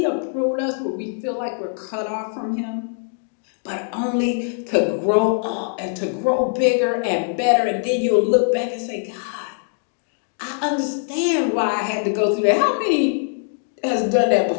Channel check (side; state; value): right; silent; digital silence